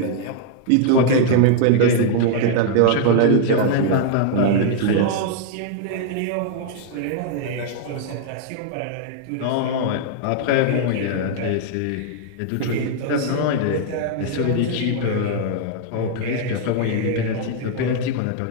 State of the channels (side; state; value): both; different; correlation 0.00